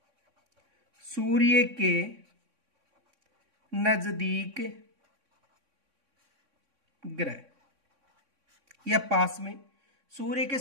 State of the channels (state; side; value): late; left; 3.6 ms